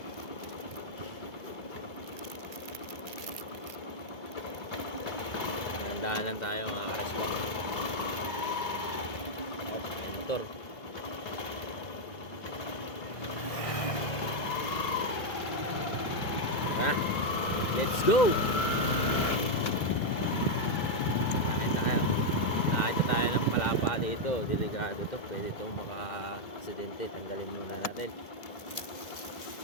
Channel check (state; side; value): late; right; 2.0 ms